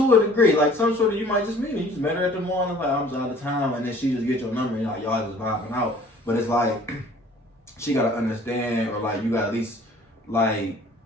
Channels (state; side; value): normal; both; correlation 0.52